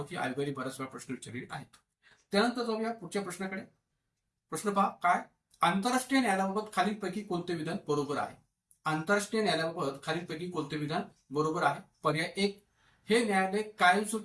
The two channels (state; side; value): identical; both; correlation 1.00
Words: आयोगाने बऱ्याच वेळा प्रश्न विचारलेले आहेत. त्यानंतर जाऊया पुढच्या प्रश्नाकडे. प्रश्न पहा काय, आंतरराष्ट्रीय न्यायालयाबाबत खालीलपैकी कोणते विधान बरोबर आहे? आंतरराष्ट्रीय न्यायालयाबाबत खालीलपैकी कोणते विधान बरोबर आहे? पर्याय 1, हे न्यायालय